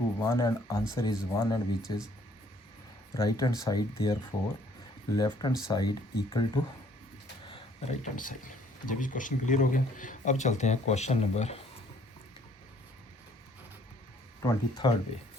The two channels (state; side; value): normal; both; correlation 0.61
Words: 1 and answer is 1 and which is right hand side, therefore left hand side equal to right hand side. जब इस क्वेश्चन क्लियर हो गया, अब चलते हैं क्वेश्चन नंबर 23rd पे।